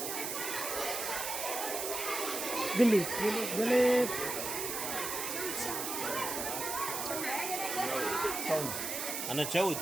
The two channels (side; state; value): right; noise; hiss, 3 dB below the sound